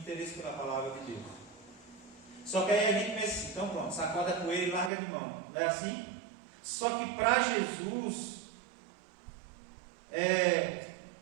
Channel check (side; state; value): left; drops out; at 4.9 s